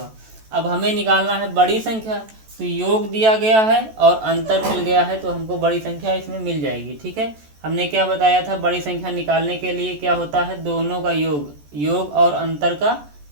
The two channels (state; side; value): late; left; 14 ms